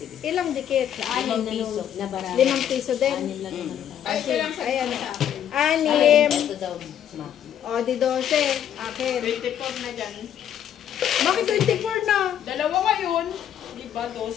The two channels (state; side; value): quieter; right; 9.9 dB